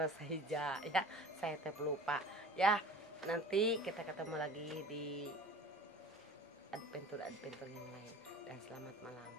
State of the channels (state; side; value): normal; both; correlation 0.42